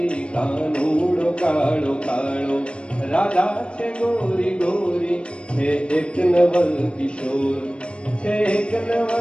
કાનૂડો કાળો કાળો રાધા છે ગોરી ગોરી, છે એક નવલ કિશોર, છે એક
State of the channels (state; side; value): late; right; 0.057 ms